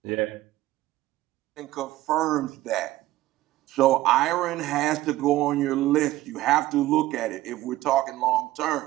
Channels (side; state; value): left; quieter; 16.1 dB